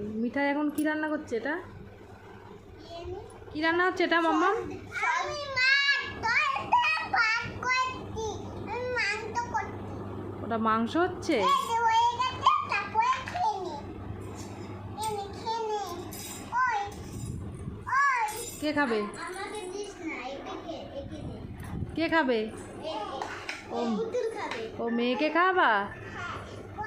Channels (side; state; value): both; identical; correlation 1.00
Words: মিঠাই এখন কি রান্না করছে? এটা কি রান্না হচ্ছে এটা মাম্মাম? ওটা মাংস হচ্ছে। কে খাবে? কে খাবে? ও মেয়েকে খাওয়াবা?